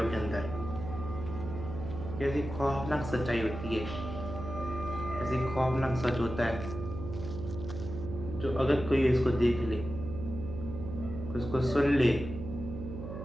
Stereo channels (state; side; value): noise; right; hum, 8 dB below the sound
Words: के अंदर कैसी खौफनाक सच्चाई होती है, ऐसी खौफनाक सच होता है जो अगर कोई इसको देख ले, उसको सुन ले,